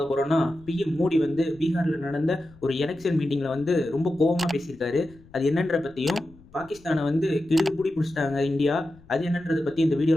போகிறோன்னா, பிஎம் மோடி வந்து பீகாரில் நடந்த ஒரு எலெக்ஷன் மீட்டிங்கில் வந்து ரொம்ப கோபமாக பேசியிருக்காரு. அது என்னன்ற பற்றியும், பாகிஸ்தானை வந்து கிடுகு பிடி பிடிச்சிட்டாங்க இந்தியா, அது என்னன்றதை பற்றி இந்த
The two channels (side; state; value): left; noise; rumble, 25 dB below the sound